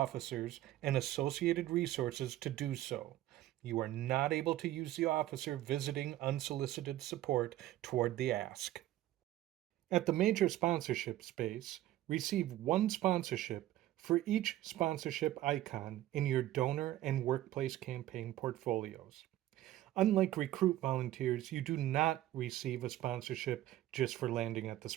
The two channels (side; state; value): left; quieter; 14.4 dB